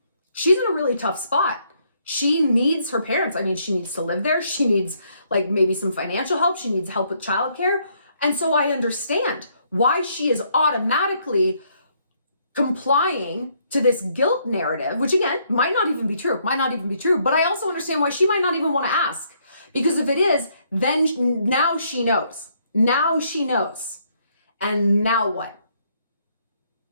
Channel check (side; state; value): both; inverted; correlation -0.70